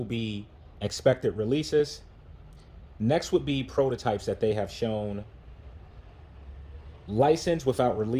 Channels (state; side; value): identical; both; correlation 1.00